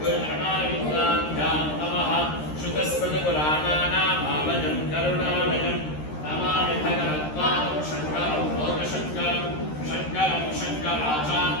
गुरुणायुक्ताभ्यां नमः श्रुतस्मृतपुराणानामालयं करुणालयं नमामि भगवत्पादं शङ्करं लोकशङ्करं शङ्करं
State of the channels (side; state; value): right; late; 13 ms